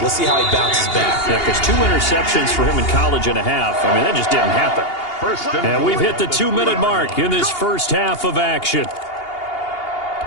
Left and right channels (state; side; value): late; right; 2.8 ms